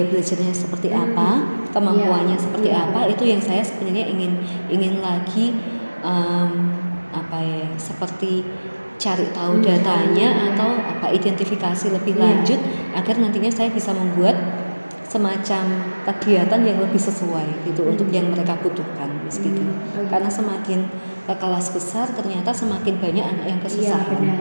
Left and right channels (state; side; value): inverted; both; correlation -1.00